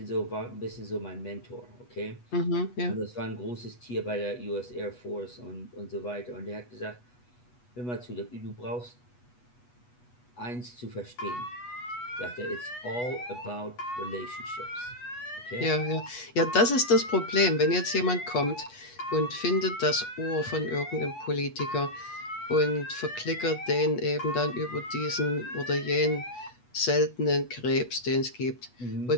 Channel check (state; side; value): late; right; 8.2 ms